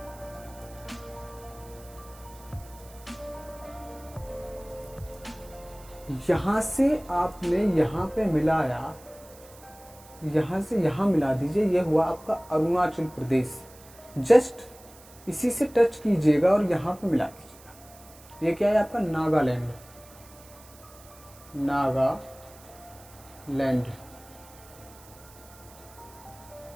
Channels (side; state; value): right; noise; hiss, 22 dB below the sound